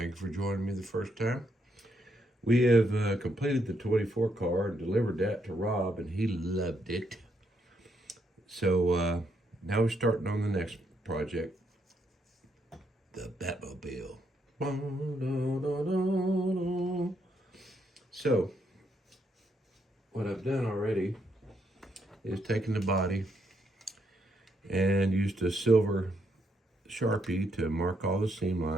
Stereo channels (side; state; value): both; normal; correlation 0.76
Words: you for joining me the first time. We have completed the 24 car and delivered that to Rob, and he loved it. So now we're starting on the next project, the Batmobile. So what I've done already is taken the body and used a silver Sharpie to mark all the seam